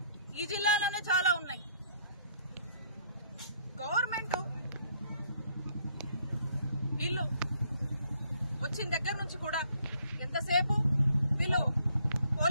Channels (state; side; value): inverted; both; correlation -0.65